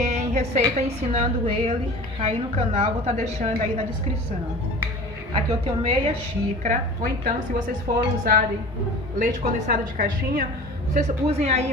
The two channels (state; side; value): normal; both; correlation 0.39